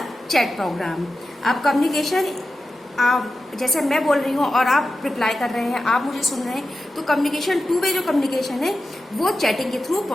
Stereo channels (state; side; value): normal; both; correlation 0.92